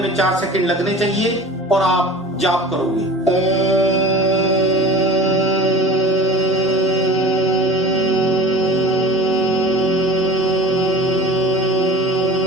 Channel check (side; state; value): both; normal; correlation 0.38